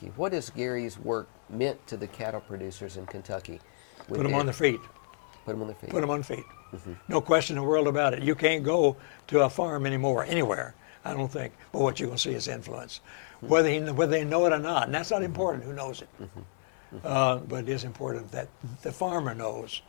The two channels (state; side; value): silent; right; 58 dB below the other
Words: what has Gary's work meant to the cattle producers in Kentucky? With Put them on their feet. Put them on their feet. Put them on feet. No question in the world about it. You can't go to a farm anymore, anywhere, I don't think. But what you're going to see is influence. Whether they know it or not, and that's not important who knows it. But it is important that the farmer knows